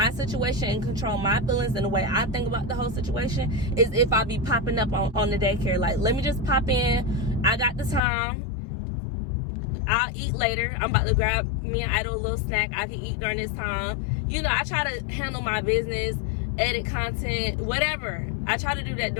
situation and control my feelings and the way I think about the whole situation is if I be popping up on the daycare. Like, let me just pop in. I got the time. I'll eat later. I'm about to grab me and Idol a little snack. I can eat during this time. You know, I try to handle my business, edit content, whatever. I try to do that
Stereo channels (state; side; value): drops out; right; at 8.0 s